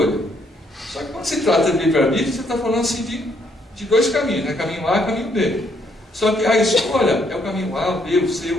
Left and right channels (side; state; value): both; normal; correlation 0.70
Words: Só que quando se trata de livre-arbítrio, você está falando assim de dois caminhos, né? Caminho A e caminho B. Só que a escolha é o caminho A, o B, o C,